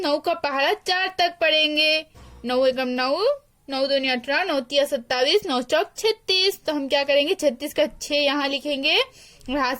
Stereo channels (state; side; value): identical; both; correlation 1.00